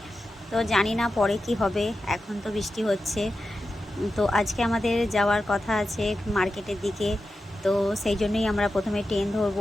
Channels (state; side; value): normal; both; correlation 0.91